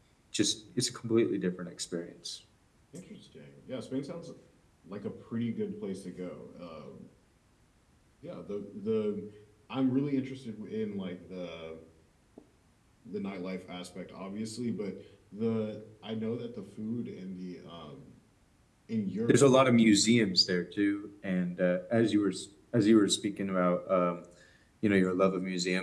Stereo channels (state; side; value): identical; both; correlation 1.00